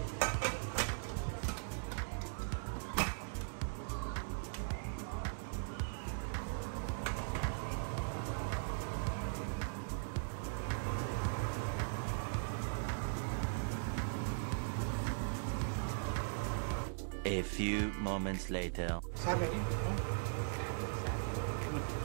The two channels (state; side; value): silent; left; digital silence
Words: A few moments later.